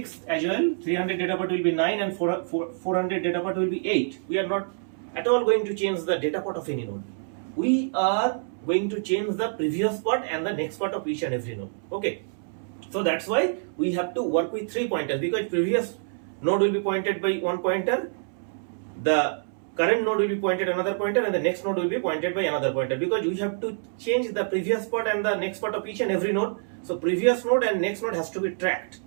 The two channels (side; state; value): left; silent; 61 dB below the other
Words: as well, 300 data part will be 9, and 400 data part will be 8. We are not at all going to change the data part of any node. We are going to change the previous part and the next part of each and every node. Okay, so that's why we have to work with three pointers, because previous node will be pointed by one pointer, the current node will be pointed another pointer, and the next node will be pointed by another pointer, because we have to change the previous part and the next part of each and every node. So previous node and next node has to be tracked